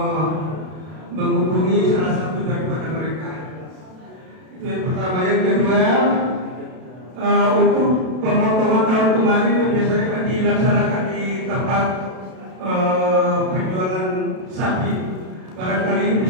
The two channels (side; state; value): left; late; 32 ms